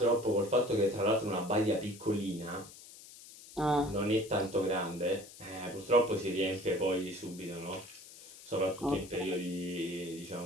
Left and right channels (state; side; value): noise; left; hiss, 18 dB below the sound